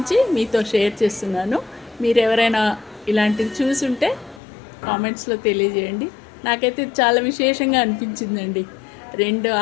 మీతో షేర్ చేస్తున్నాను. మీరు ఎవరైనా ఇలాంటిది చూసుంటే కామెంట్స్లో తెలియజేయండి. నాకైతే చాలా విశేషంగా అనిపించిందండి. 2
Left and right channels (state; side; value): drops out; right; at 4.4 s